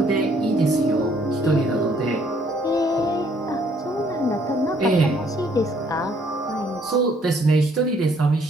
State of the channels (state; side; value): normal; both; correlation 0.64